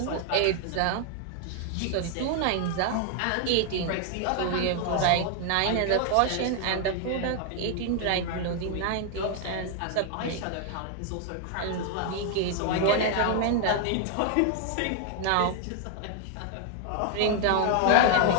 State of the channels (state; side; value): different; both; correlation 0.00